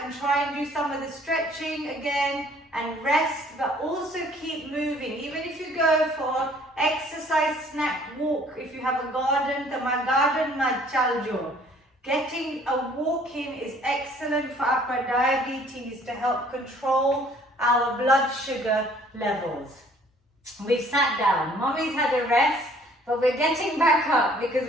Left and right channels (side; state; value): both; normal; correlation 0.57